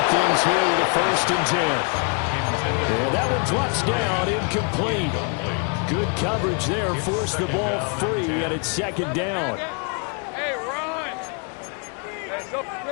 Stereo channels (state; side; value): quieter; right; 37.0 dB